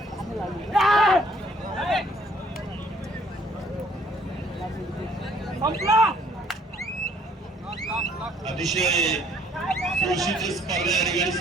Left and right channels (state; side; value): normal; both; correlation 0.61